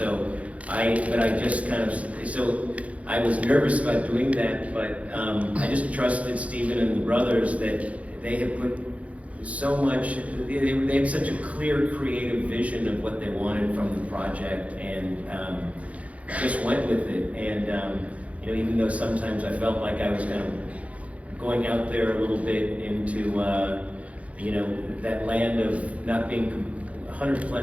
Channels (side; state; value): left; late; 0.066 ms